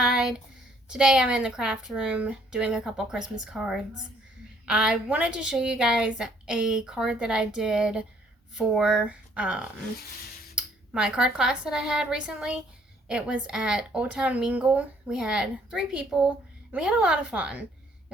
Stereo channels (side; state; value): both; normal; correlation 0.63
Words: Today I'm in the craft room doing a couple Christmas cards. I wanted to show you guys a card that I did for my card class that I had recently. It was at Old Town Mingle. We had 3 people and we had a lot of fun. It